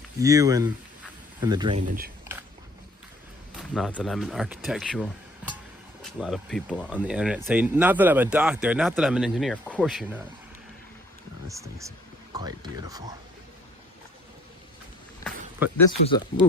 you and the drainage. Not that I'm an architectural. A lot of people on the internet say, not that I'm a doctor, not that I'm an engineer. Of course you're not. No, this thing's quite beautiful. But this was a,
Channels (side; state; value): both; normal; correlation 0.57